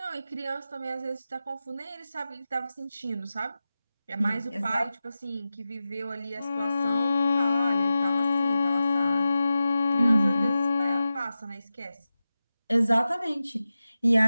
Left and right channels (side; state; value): both; inverted; correlation -0.93